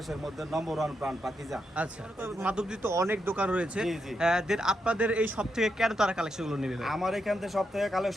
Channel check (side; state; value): both; normal; correlation 0.83